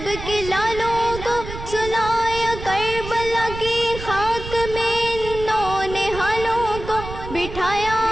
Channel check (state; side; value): noise; right; rumble, 10 dB below the sound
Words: کے لالوں کو سنایا کربلا کی خاک میں انہوں نے حالوں کو بٹھایا